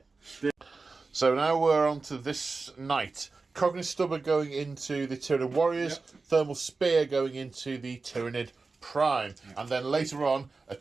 so now we're on to this night. Cognate Stubber going into the Tyranid Warriors. Yep. Thermal Spear going into the Tyranid Prime. And then later on, a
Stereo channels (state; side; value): quieter; left; 4.0 dB